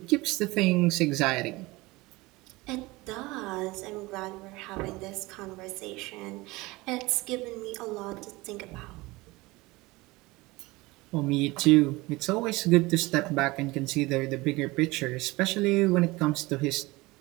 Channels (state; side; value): quieter; left; 21.7 dB